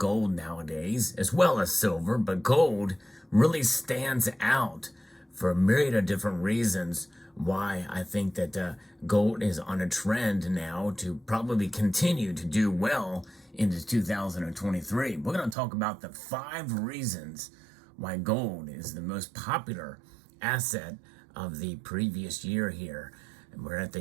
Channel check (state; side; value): drops out; left; at 15.6 s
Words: nowadays, as well as silver, but gold really stands out for a myriad of different reasons why I think that gold is on a trend now to probably continue to do well into 2023. We're going to talk about the 5 reasons why gold is the most popular asset of the previous year here. And we're at